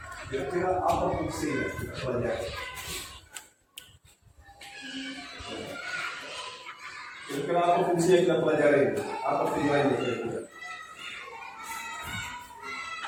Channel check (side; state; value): both; identical; correlation 1.00